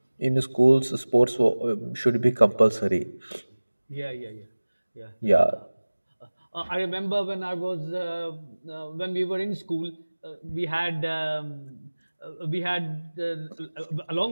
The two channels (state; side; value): inverted; both; correlation -1.00